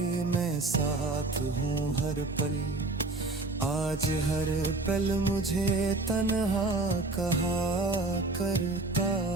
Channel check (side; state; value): left; quieter; 3.1 dB